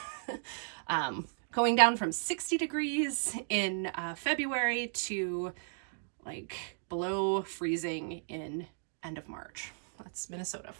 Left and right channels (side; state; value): left; silent; digital silence